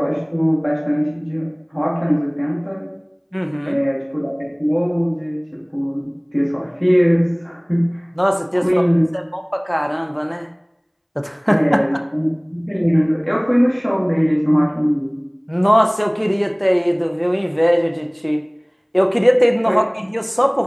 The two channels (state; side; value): identical; both; correlation 1.00